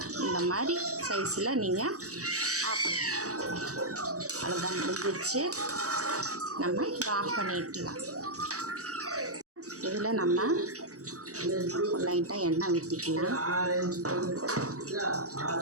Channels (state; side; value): late; left; 0.66 ms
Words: இந்த மாதிரி சைஸில் நீங்கள் ஆஃப் அவ்வளோதான், முடிஞ்சிருச்சு. நம்ம இதை ஆஃப் பண்ணிடலாம். இதில் நம்ம லைட்டாக எண்ணெய் ஊற்றிக்கலாம்.